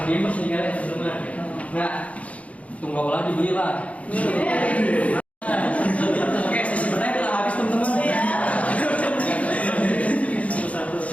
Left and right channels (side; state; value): right; late; 0.066 ms